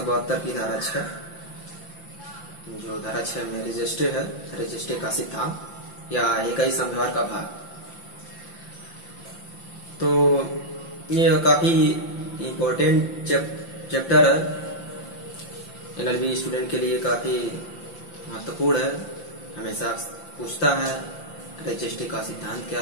की धारा 6, जो धारा 6 में रजिस्ट्रे है, रजिस्ट्रे का सिद्धांत या इकाई समझौता का भाग। तो ये काफी इम्पोर्टेंट चैप्टर है, एलएलबी स्टूडेंट के लिए काफी महत्वपूर्ण है। हमेशा पूछता है रजिस्ट्री का सिद्धांत क्या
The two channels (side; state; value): right; late; 5.8 ms